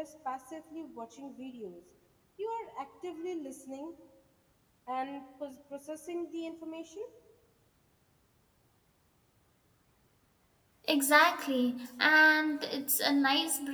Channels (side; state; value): both; identical; correlation 1.00